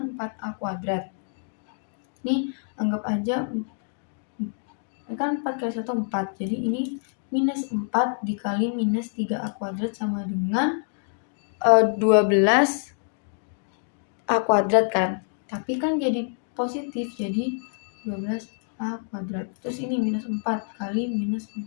4A kuadrat. Ini anggap aja kan 4 kali 1 4. Jadi ini minus 4 dikali minus 3A kuadrat sama dengan 12A kuadrat kan. Tapi kan jadi positif, jadi 12A A kuadrat. Terus ini minus 4 kali minus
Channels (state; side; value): silent; right; 61 dB below the other